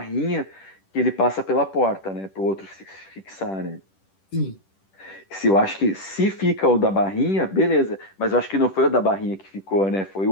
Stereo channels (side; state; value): right; late; 10 ms